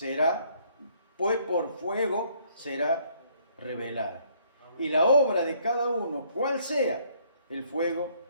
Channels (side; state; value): both; inverted; correlation -0.65